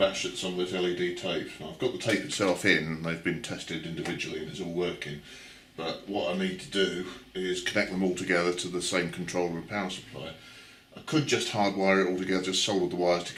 at some of this LED tape. Now, I've got the tape itself in, they've been tested individually and it's all working, but what I need to do is connect them all together to the same controller and power supply. I could just hardwire it all together, just solder the wires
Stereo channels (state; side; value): identical; both; correlation 1.00